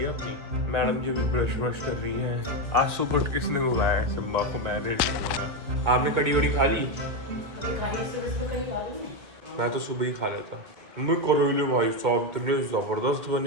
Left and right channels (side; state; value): left; late; 2.4 ms